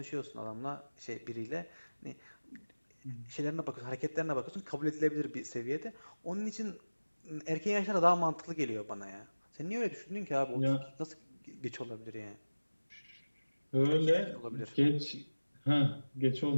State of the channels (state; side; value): inverted; both; correlation -1.00